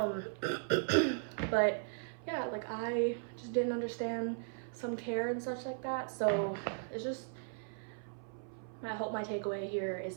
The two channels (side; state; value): left; silent; 53 dB below the other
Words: But yeah, like I just didn't understand some care and such like that. So it's just, I hope my takeaway here is